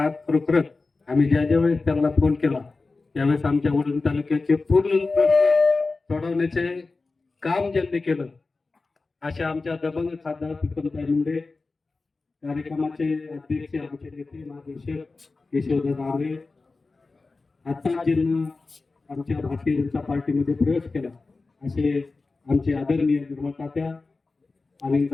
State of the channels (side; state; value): right; quieter; 3.8 dB